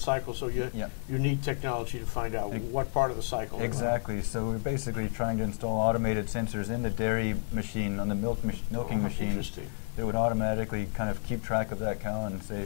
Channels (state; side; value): silent; right; 57 dB below the other